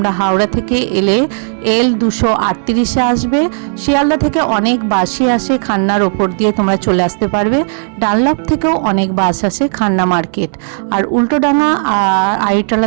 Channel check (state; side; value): silent; left; 68 dB below the other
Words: হাওড়া থেকে এলে L238-এ আসবে। শিয়ালদা থেকে অনেক বাসই আসে, খান্নার ওপর দিয়ে তোমরা চলে আসতে পারবে। ডানলপ থেকেও অনেক বাস আসে খান্না মার্কেট। আর উল্টোডাঙ্গা